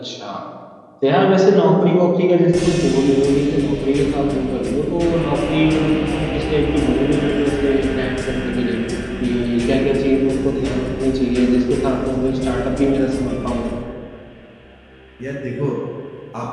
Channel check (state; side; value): identical; both; correlation 1.00